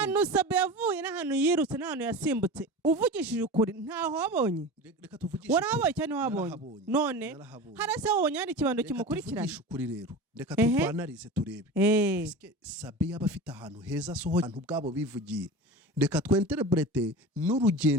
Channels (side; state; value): both; normal; correlation 0.31